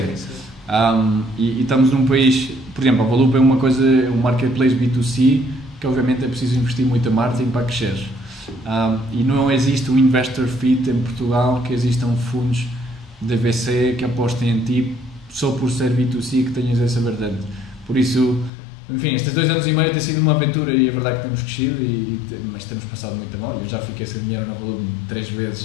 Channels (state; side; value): drops out; right; at 18.5 s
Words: Sim. E estamos num país, por exemplo, a Volup é um marketplace B2C, que obviamente é preciso investir muito em marketing para crescer. E não existe um investor fit em Portugal que existam fundos de VC que apostem em ti só por ser B2C que tenhas essa vertente. Por isso, enfim, estes 2 anos e meio tem sido uma aventura e é verdade que temos crescido, mas temos passado muito mal. Eu já fiquei sem dinheiro na Volup 3